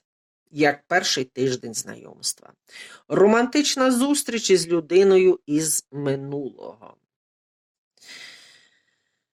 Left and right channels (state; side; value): identical; both; correlation 1.00